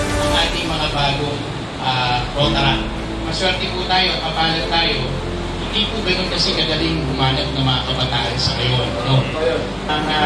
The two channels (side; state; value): both; identical; correlation 1.00